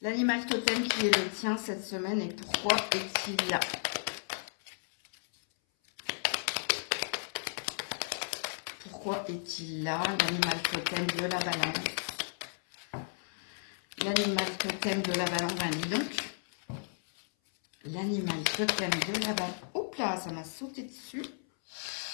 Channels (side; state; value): right; silent; 55 dB below the other